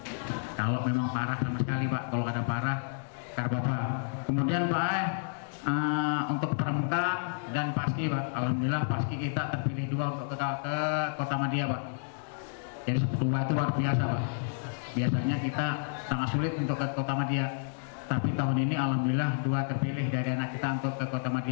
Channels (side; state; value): right; silent; digital silence